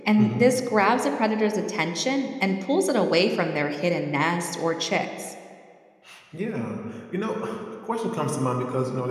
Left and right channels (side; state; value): both; identical; correlation 1.00